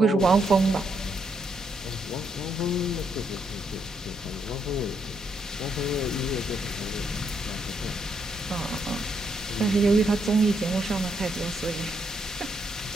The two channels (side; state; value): both; normal; correlation 0.77